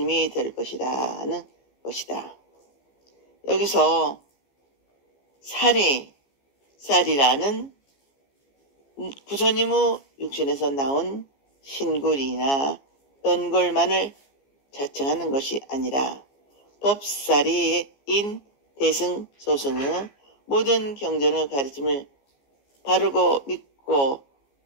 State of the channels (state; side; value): late; right; 15 ms